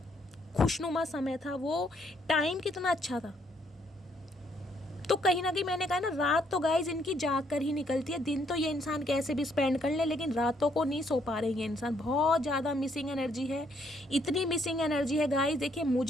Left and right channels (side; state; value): both; normal; correlation 0.70